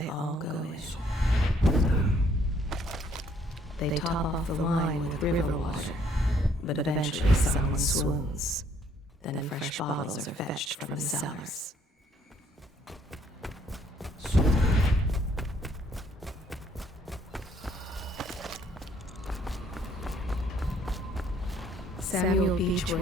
all go in. They top off the wine with river water, but eventually someone swoons. Then fresh bottles are fetched from the cellars. Samuel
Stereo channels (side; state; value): both; normal; correlation 0.65